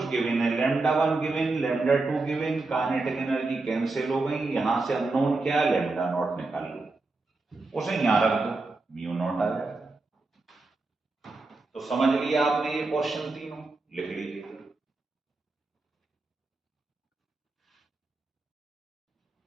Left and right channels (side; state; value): left; quieter; 3.4 dB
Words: गिवन है, lambda one given, lambda two given, kinetic energy cancel हो गई, यहां से अननोन क्या है? लैम्डा नॉट निकाल लो, उसे यहां रख दो, म्यू नॉट आ जाएगा। तो समझ लिया आपने ये क्वेश्चन तीनों, लिख लीजिए।